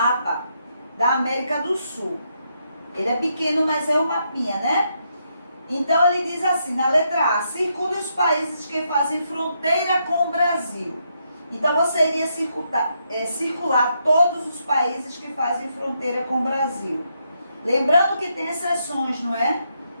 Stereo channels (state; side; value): inverted; both; correlation -0.79